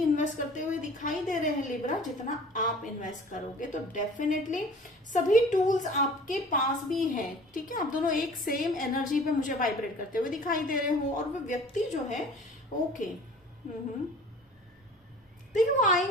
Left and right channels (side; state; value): both; normal; correlation 0.46